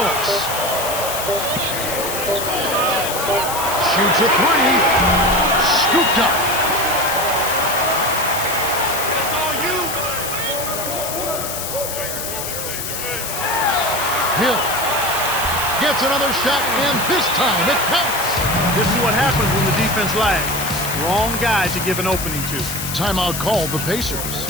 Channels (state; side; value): noise; left; hiss, 5 dB below the sound